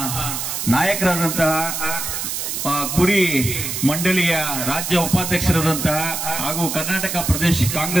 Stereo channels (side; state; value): right; noise; hiss, 3 dB below the sound